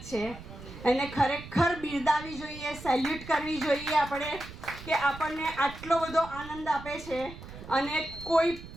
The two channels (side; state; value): right; noise; rumble, 14 dB below the sound